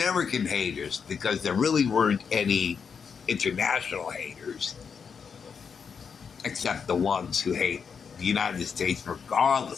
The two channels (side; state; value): right; quieter; 6.3 dB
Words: haters, because there really weren't any international haters, except the ones who hate the United States